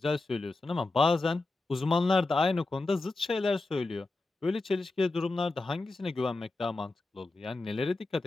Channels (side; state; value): right; quieter; 3.2 dB